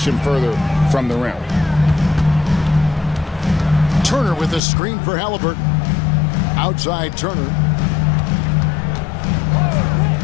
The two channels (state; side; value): drops out; right; at 4.6 s